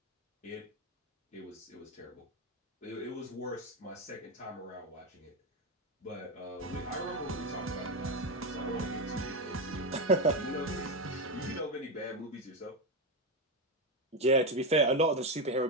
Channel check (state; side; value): normal; both; correlation 0.11